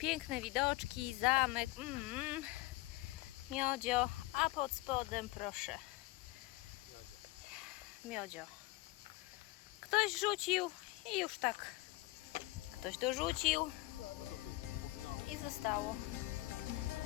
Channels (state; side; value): quieter; right; 20.1 dB